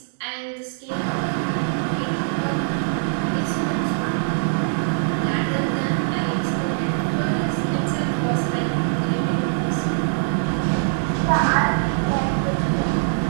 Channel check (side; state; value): left; silent; digital silence